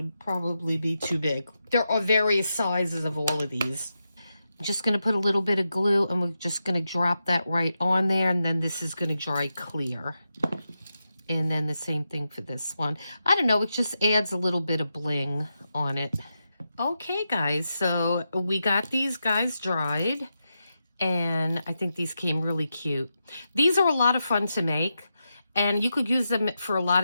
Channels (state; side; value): inverted; both; correlation -0.88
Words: probably be too big. There are various sizes of all of these. I'm just going to put a little bit of glue, and we're just going to drop that right on there, and then this is going to dry clear. And then the same thing for this one. I don't know, it just adds a little bit of bling on it. Okay, guys, so we got these guys dried. And I think these came really cute. These are a lot of fun to make, and you could use them for a lot